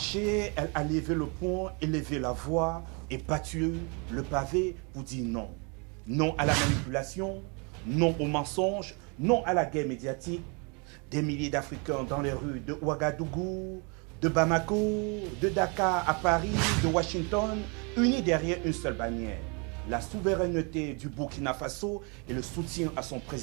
elle a levé le poing, élevé la voix et battu le pavé pour dire non. Non à la manipulation, non au mensonge, non à la guerre médiatique. Des milliers d'Africains dans les rues de Ouagadougou, de Bamako, de Dakar à Paris, de Washington, unis derrière une seule bannière. La souveraineté du Burkina Faso et le soutien à son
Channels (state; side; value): quieter; left; 33.4 dB